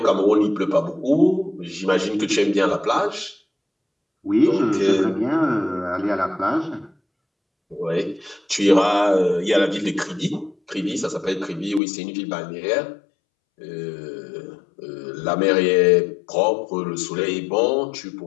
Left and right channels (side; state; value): right; drops out; at 11.8 s